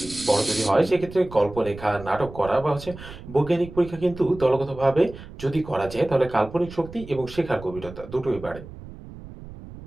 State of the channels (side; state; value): right; noise; rumble, 15 dB below the sound